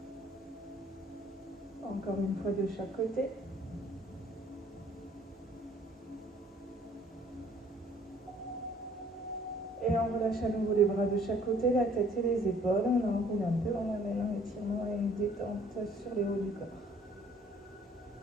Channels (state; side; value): normal; both; correlation 0.57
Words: Encore une fois de chaque côté. Et on relâche à nouveau les bras de chaque côté, la tête et les épaules. On enroule un peu, on amène un étirement et une détente sur les hauts du corps.